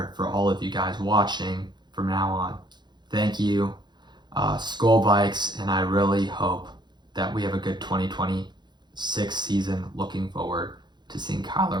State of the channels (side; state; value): left; late; 0.21 ms